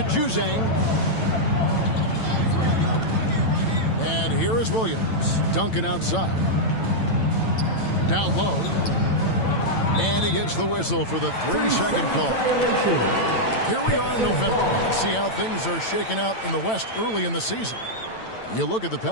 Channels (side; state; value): right; late; 9.0 ms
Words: Juzang. And here is Williams. Duncan outside. Down low. And he gets the whistle for the 3-second call. Here we are in November. Let's see how things are shaking out in the West early in the season. You look at the